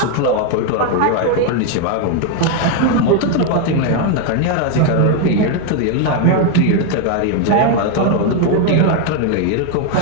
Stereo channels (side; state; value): both; different; correlation 0.01